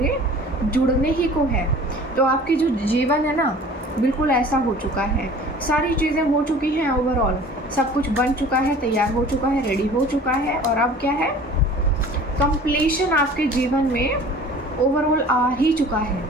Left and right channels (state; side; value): normal; both; correlation 0.45